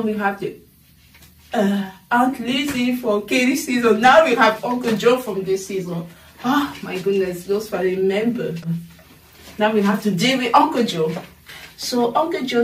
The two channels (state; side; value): identical; both; correlation 1.00